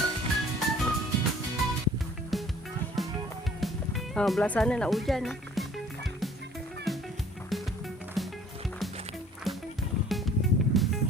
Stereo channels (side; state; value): both; normal; correlation 0.54